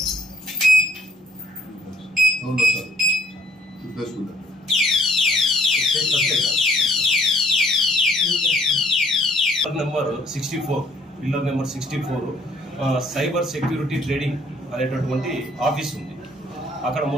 number 64 pillar number 64 cyber security trading అనేటటువంటి ఆఫీస్ ఉంది. అక్కడ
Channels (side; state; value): both; normal; correlation 0.61